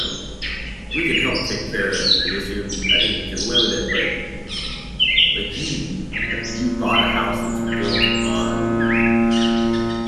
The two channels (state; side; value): identical; both; correlation 1.00